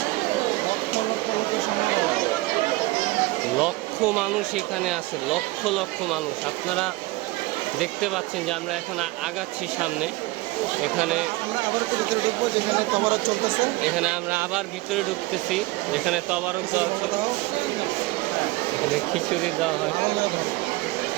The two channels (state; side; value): quieter; left; 20.8 dB